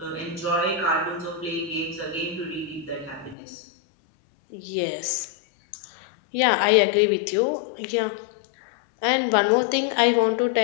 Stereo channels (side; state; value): right; drops out; at 3.4 s